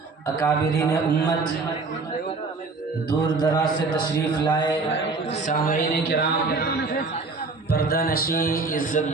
اکابرین امت، دور دراز سے تشریف لائے سامعین کرام، پردہ نشین،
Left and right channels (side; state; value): left; quieter; 4.0 dB